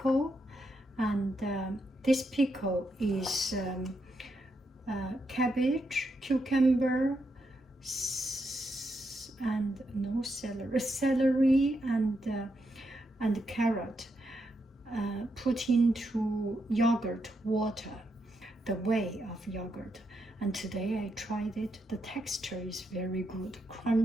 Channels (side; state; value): both; normal; correlation 0.82